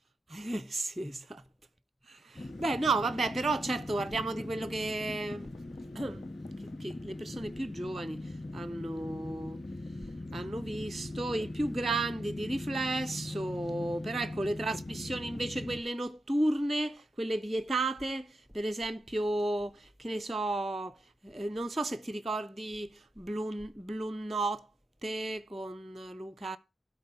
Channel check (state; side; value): normal; both; correlation 0.87